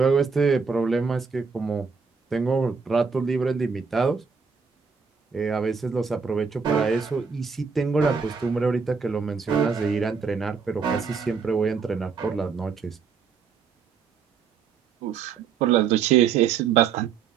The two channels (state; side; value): quieter; left; 5.8 dB